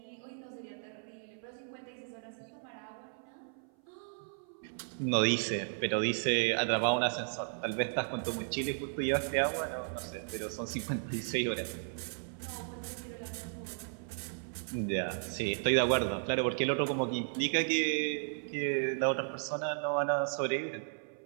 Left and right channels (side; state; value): left; silent; 55 dB below the other